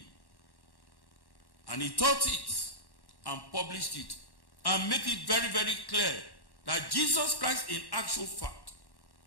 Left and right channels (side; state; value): right; late; 1.1 ms